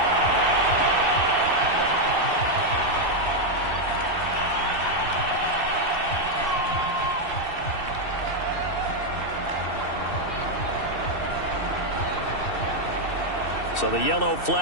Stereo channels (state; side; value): late; right; 2.6 ms